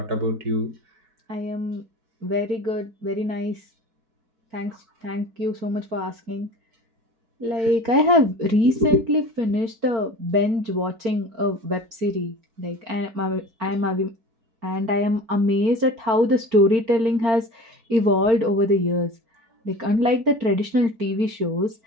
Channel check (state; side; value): late; left; 4.4 ms